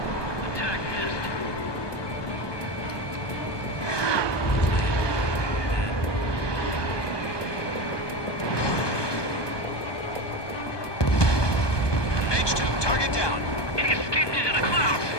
Attack missed. H2, target down. He escaped into the clouds.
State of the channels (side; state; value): right; late; 1.2 ms